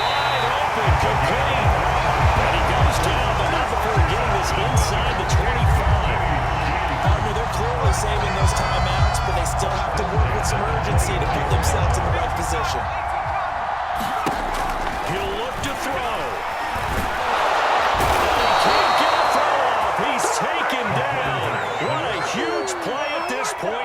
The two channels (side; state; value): both; identical; correlation 1.00